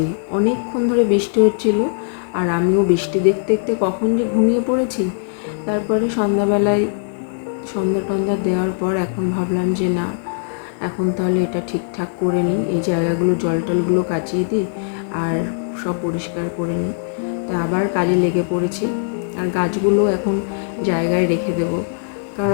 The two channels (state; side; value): silent; right; digital silence